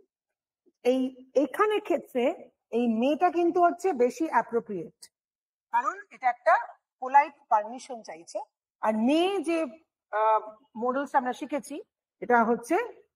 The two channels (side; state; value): both; identical; correlation 1.00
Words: এখানে ক্ষেত্রে এই মেটা কিন্তু হচ্ছে বেশি অ্যাপ্রোপ্রিয়েট, কারণ এটা একটা পোলাইট পারমিশন চাইছে। আর মে যে মডেলস আমরা শিখেছি, এটা হচ্ছে